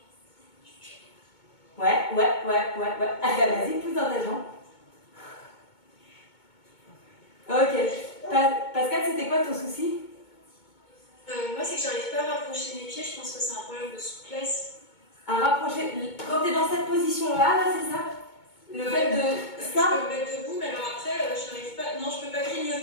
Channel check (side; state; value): right; late; 2.2 ms